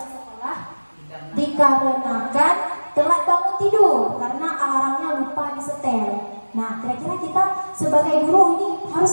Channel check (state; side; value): inverted; both; correlation -1.00